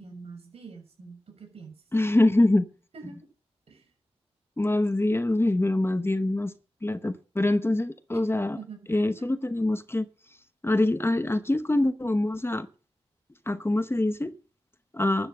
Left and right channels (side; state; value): both; normal; correlation 0.97